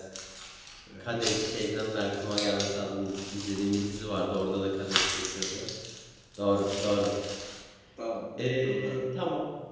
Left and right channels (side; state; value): both; identical; correlation 1.00